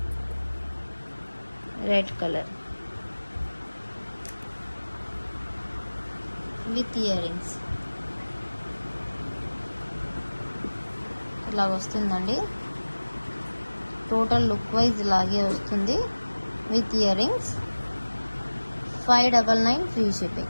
Red colour with ear rings ఇలా వస్తుందండి. టోటల్ లుక్ వైజ్ ఇలాగే వస్తుంది with ear rings. 599 free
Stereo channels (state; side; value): inverted; both; correlation -1.00